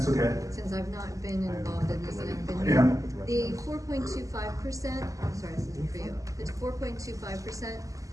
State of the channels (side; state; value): left; late; 0.16 ms